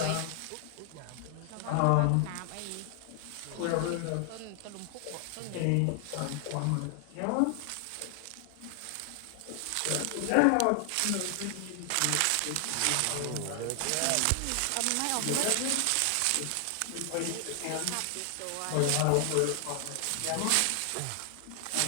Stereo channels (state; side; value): different; both; correlation 0.00